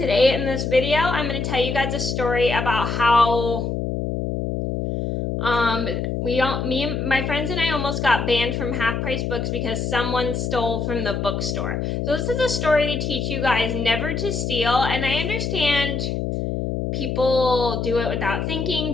in this video, I'm going to tell you guys a story about how me and my friends and I almost got banned from Half Price Books because someone stole from the bookstore. So this is a story to teach you guys never to steal, and I understand people do it without thinking,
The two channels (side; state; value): left; noise; hum, 2 dB below the sound